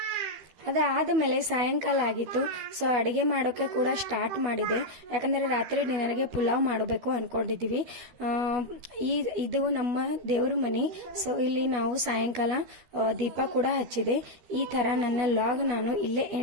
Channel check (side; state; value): left; late; 12 ms